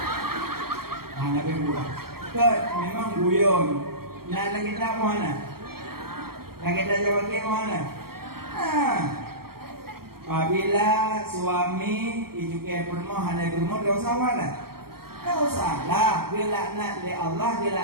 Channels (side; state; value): left; late; 0.94 ms